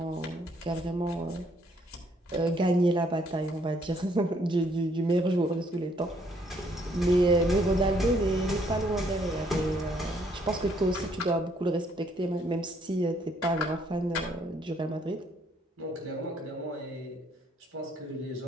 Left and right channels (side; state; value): both; normal; correlation 0.67